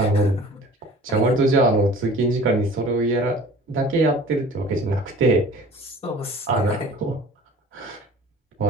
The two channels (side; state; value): both; normal; correlation 0.46